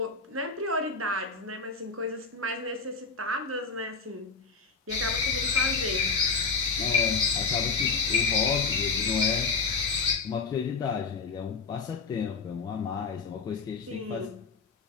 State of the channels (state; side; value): quieter; right; 4.7 dB